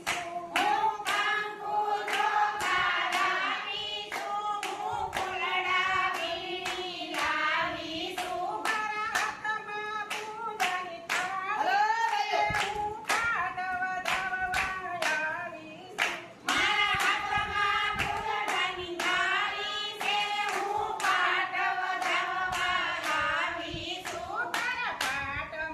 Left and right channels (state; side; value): identical; both; correlation 1.00